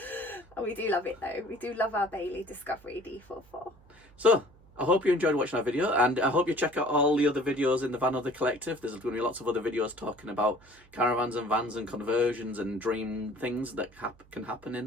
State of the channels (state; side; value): noise; right; hum, 27 dB below the sound